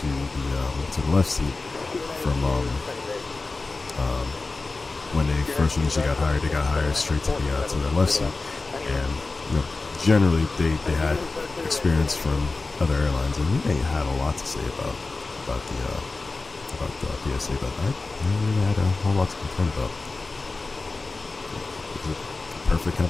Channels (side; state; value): right; quieter; 3.6 dB